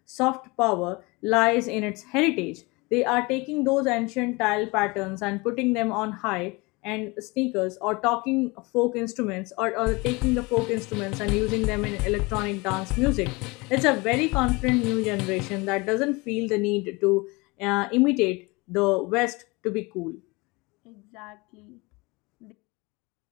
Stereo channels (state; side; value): quieter; right; 25.4 dB